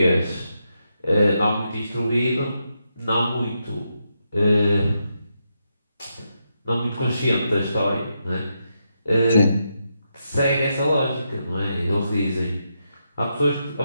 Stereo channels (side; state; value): both; inverted; correlation -0.83